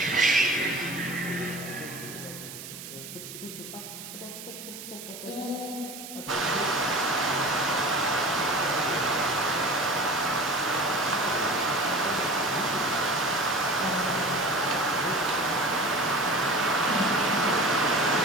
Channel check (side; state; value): right; noise; hiss, 12 dB below the sound